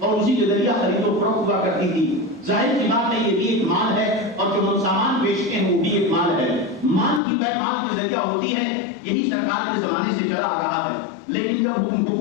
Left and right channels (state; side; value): drops out; right; at 7.2 s